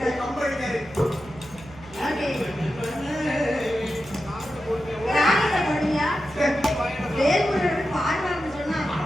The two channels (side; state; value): right; noise; hum, 20 dB below the sound